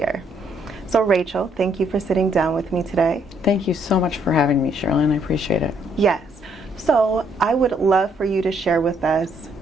So Rachael, thank you for sitting down with me today. Thank you so much for having me, Sherlynn. I appreciate it. Yes. So I would love for you to share with us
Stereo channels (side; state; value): both; normal; correlation 0.69